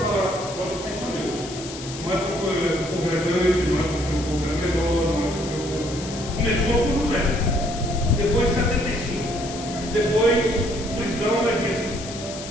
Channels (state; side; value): noise; left; hiss, 12 dB below the sound